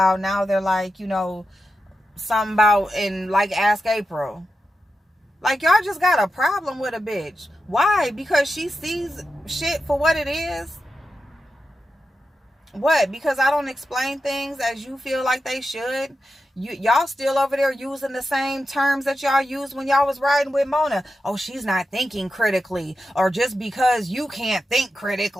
now they're like, something about, and like Ask April. Like, y'all just got a problem with a bitch. Why? Because she sees shit for what it is? What? Because I don't explain things as you feel like they should? Y'all still over there using the same terms that y'all used when y'all was riding with Mona. Oh, she's not thinking critically. Or just because you can't think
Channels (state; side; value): normal; both; correlation 0.89